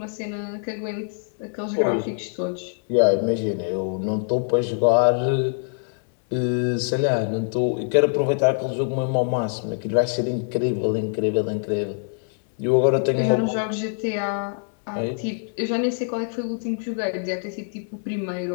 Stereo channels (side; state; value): right; silent; digital silence